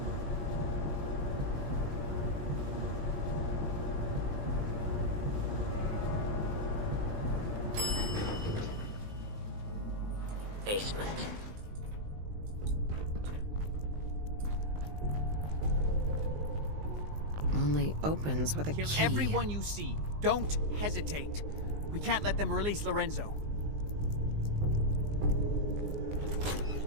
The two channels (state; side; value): late; left; 19 ms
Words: Basement. only opens with a Kill key. everyone you see. Don't hesitate. We can't let them release Lorenzo.